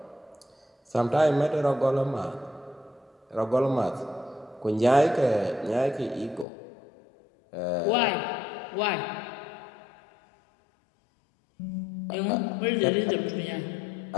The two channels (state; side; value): drops out; right; at 6.5 s